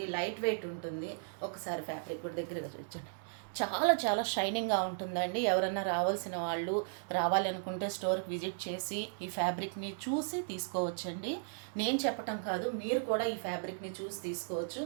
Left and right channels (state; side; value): silent; left; 54 dB below the other